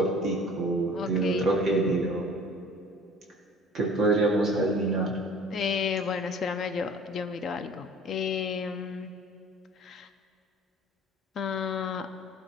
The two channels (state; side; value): normal; both; correlation 0.47